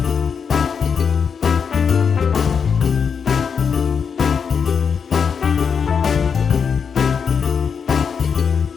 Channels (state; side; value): quieter; right; 6.4 dB